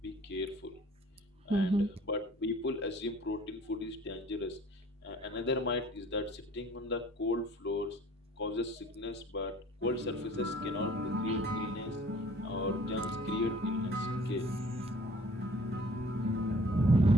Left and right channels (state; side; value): normal; both; correlation 0.52